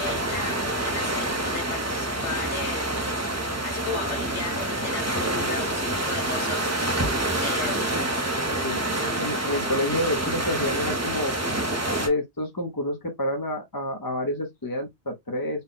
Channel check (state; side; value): normal; both; correlation -0.09